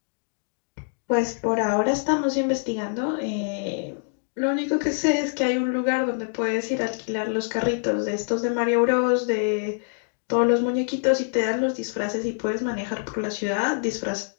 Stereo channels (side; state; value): right; silent; digital silence